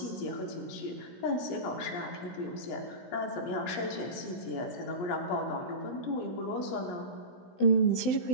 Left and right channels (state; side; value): late; right; 17 ms